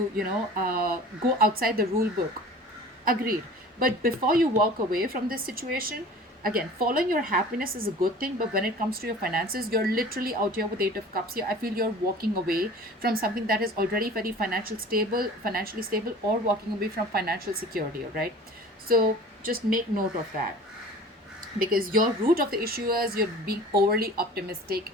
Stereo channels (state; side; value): normal; both; correlation 0.43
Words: go outside the rule book. Agreed. But before you walk away from this situation, Again, following your happiness is a good thing, but when it comes to your finances, you're literally out here with 8 of cups here. I feel you're walking away from something that is already very financially stable, or walking away from financial security. All right, so just make note of that, because your root of the issue is you're being overly optimistic